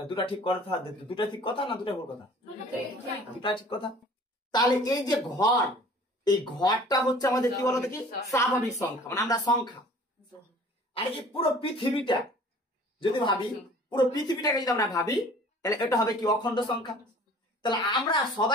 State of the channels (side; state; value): both; normal; correlation 0.49